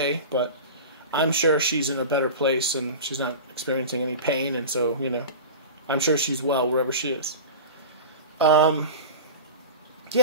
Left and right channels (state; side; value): inverted; both; correlation -0.30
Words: but I'm sure she's in a better place and she's not experiencing any pain, and so, I'm sure she's well wherever she is.